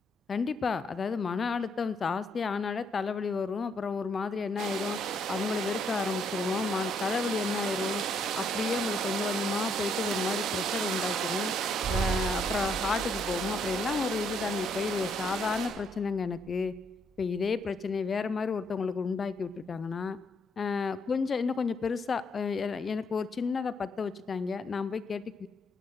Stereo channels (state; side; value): normal; both; correlation 0.72